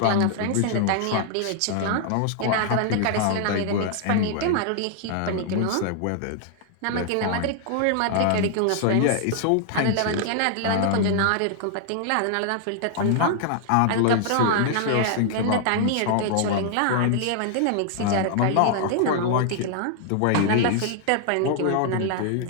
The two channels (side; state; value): both; different; correlation 0.00